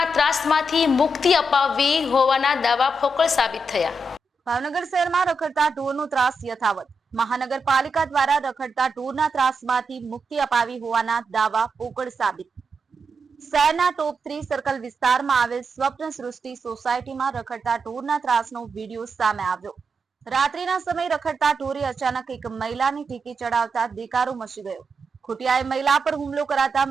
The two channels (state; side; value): normal; both; correlation 0.85